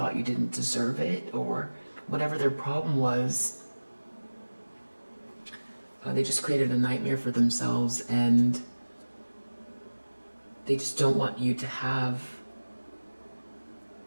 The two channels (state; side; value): inverted; both; correlation -1.00